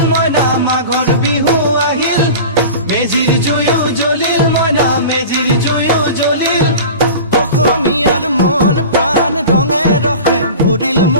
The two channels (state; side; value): inverted; both; correlation -0.35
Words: মইনা মাঘৰ বিহু আহিল মেজিৰ জুয়ো জ্বলিল মইনা মেজিৰ জুয়ো জ্বলিল অসমীয়াৰ মন প্ৰাণ ৰঙে ৰসে ভৰিল